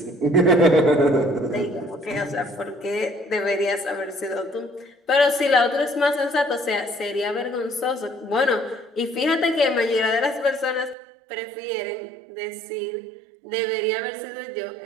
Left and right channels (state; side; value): drops out; left; at 11.0 s